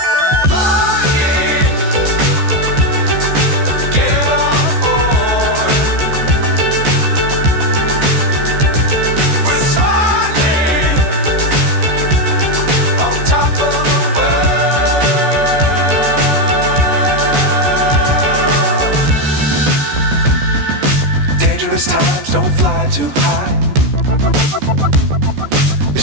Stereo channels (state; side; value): late; left; 14 ms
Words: Times don't fly too high. Be